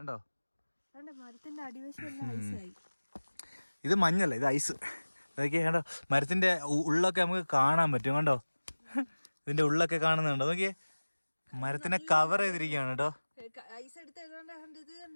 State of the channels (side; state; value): both; inverted; correlation -1.00